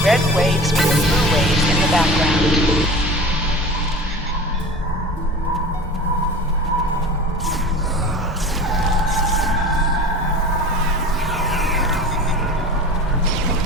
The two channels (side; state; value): both; normal; correlation 0.36